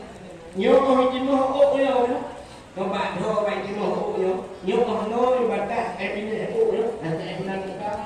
nyoh oh yo các bạn thưa bạn chỉ một phụ nhớ còn nói và ta em đi để phụ nhớ em đang các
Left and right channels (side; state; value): both; identical; correlation 1.00